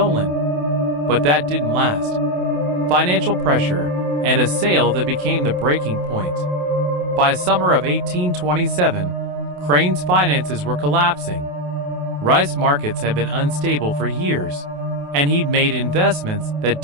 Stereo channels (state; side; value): late; left; 28 ms